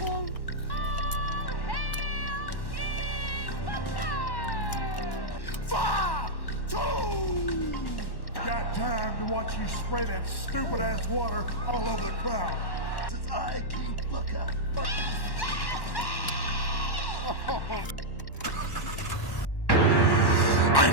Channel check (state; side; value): late; right; 1.1 ms